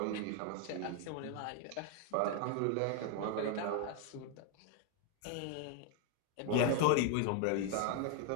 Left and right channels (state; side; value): different; both; correlation 0.01